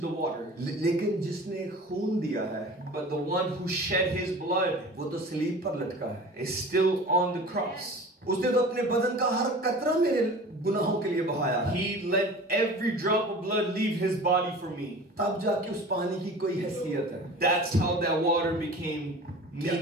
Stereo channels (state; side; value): normal; both; correlation 0.39